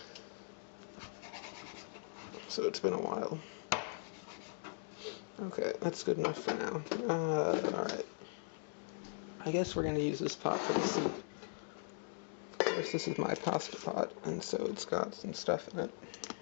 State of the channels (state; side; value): silent; right; digital silence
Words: So it's been a while. Okay, that's good enough for now. Alright. I guess we're going to use this pot for the soup. Of course, this is my pasta pot, and so it's got some stuff in it.